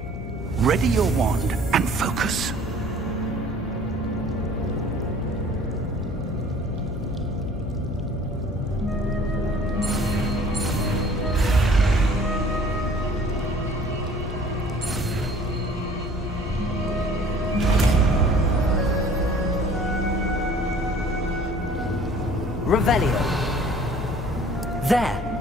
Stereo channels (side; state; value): left; noise; hum, 9 dB below the sound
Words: Ready your wand and focus. Revelio. There!